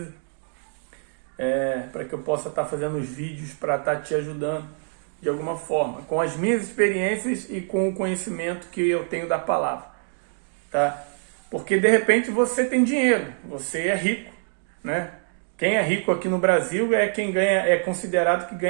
para que eu possa estar fazendo os vídeos para estar te ajudando de alguma forma, com as minhas experiências e com o conhecimento que eu tenho da palavra. Tá? Porque de repente você tem dinheiro, você é rico, né? Quem é rico aqui no Brasil é quem é considerado que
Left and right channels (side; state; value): left; silent; 62 dB below the other